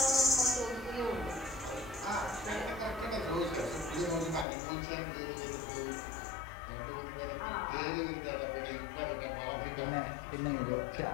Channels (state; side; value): drops out; right; at 4.5 s